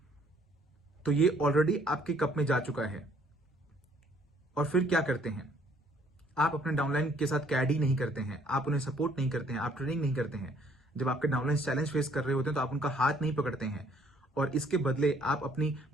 तो ये ऑलरेडी आपके कप में जा चुका है। और फिर क्या करते हैं आप? अपने डाउनलाइन के साथ कैडी नहीं करते हैं, आप उन्हें सपोर्ट नहीं करते हैं, आप ट्रेनिंग नहीं करते हैं। जब आपके डाउनलाइन चैलेंज फेस कर रहे होते हैं तो आप उनका हाथ नहीं पकड़ते हैं, और इसके बदले आप अपनी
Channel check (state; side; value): normal; both; correlation 0.62